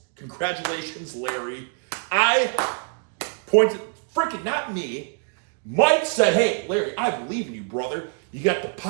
Congratulations, Larry. I pointed, freaking not me. Mike said, hey, Larry, I believe in you, brother. You got the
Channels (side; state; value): left; quieter; 39.2 dB